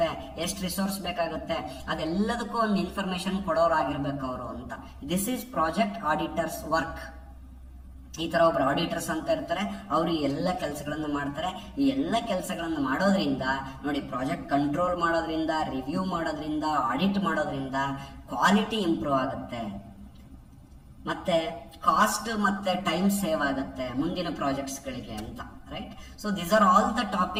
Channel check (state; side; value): identical; both; correlation 1.00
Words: ಎಷ್ಟು ರಿಸೋರ್ಸ್ ಬೇಕಾಗುತ್ತೆ, ಅದೆಲ್ಲದಕ್ಕೂ ಒಂದು ಇನ್ಫಾರ್ಮೇಶನ್ ಕೊಡೋರಾಗಿರ್ಬೇಕು ಅವರು ಅಂತ. This is project auditors work. ಈ ತರ ಒಬ್ರು ಆಡಿಟರ್ಸ್ ಅಂತ ಇರ್ತಾರೆ, ಅವರು ಈ ಎಲ್ಲ ಕೆಲಸಗಳನ್ನು ಮಾಡ್ತಾರೆ. ಈ ಎಲ್ಲ ಕೆಲಸಗಳನ್ನು ಮಾಡೋದ್ರಿಂದ ನೋಡಿ, ಪ್ರಾಜೆಕ್ಟ್ ಕಂಟ್ರೋಲ್ ಮಾಡೋದ್ರಿಂದ, ರಿವ್ಯೂ ಮಾಡೋದ್ರಿಂದ, ಆಡಿಟ್ ಮಾಡೋದ್ರಿಂದ ಕ್ವಾಲಿಟಿ ಇಂಪ್ರೂವ್ ಆಗುತ್ತೆ, ಮತ್ತೆ ಕಾಸ್ಟ್ ಮತ್ತೆ ಟೈಮ್ ಸೇವ್ ಆಗುತ್ತೆ ಮುಂದಿನ ಪ್ರಾಜೆಕ್ಟ್ಸ್ ಗಳಿಗೆ ಅಂತ. Right. So these are all the